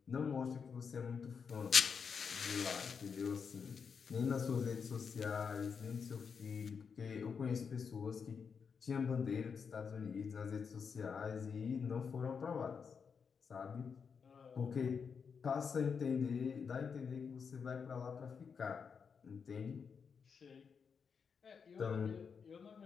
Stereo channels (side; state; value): right; quieter; 6.1 dB